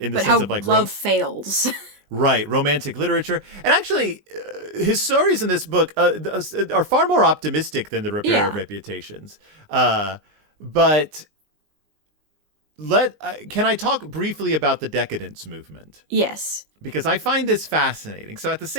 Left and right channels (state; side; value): late; left; 20 ms